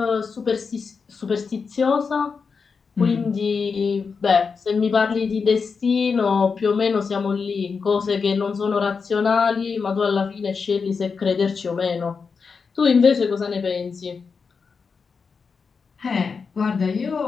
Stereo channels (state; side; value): quieter; right; 5.3 dB